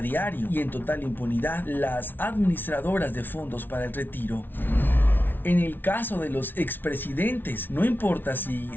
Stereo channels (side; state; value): right; late; 0.094 ms